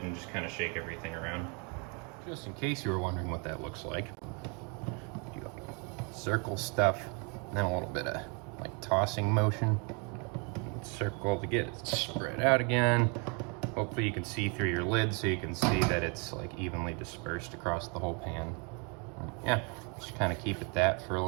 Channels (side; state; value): left; quieter; 33.9 dB